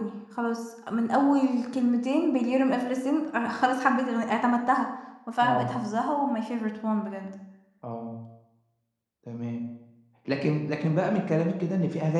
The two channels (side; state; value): both; identical; correlation 1.00